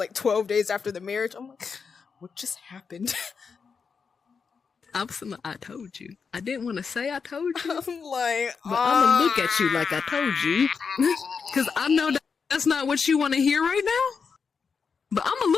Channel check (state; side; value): quieter; right; 5.7 dB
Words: 12 days after the marriage. I'm like, what just happened? I told you. I didn't want to say I told you. I'm like, but I'm gonna look at you like I told you. Because I know that's not what you want to hear right now. But I'm gonna